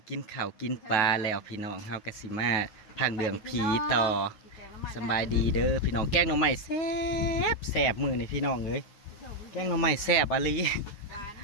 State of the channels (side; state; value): right; late; 9.4 ms